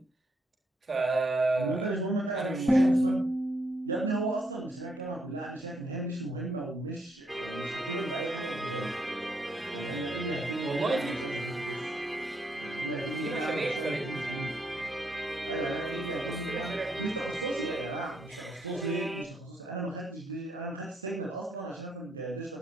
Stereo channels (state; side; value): normal; both; correlation 0.75